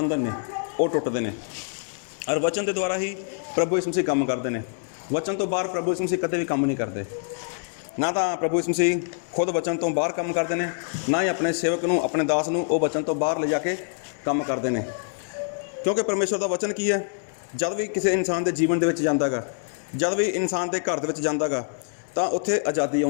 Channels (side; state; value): right; silent; 61 dB below the other